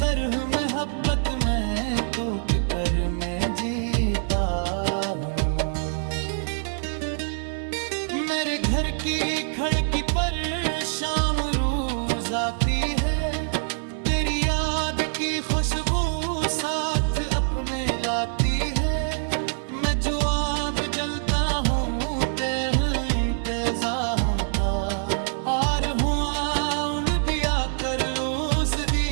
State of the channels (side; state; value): left; silent; 62 dB below the other